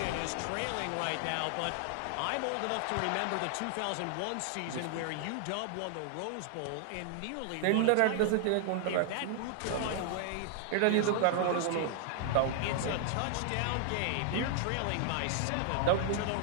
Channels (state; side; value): different; both; correlation 0.00